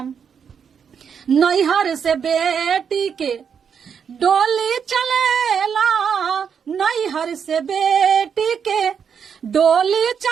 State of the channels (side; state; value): left; quieter; 7.1 dB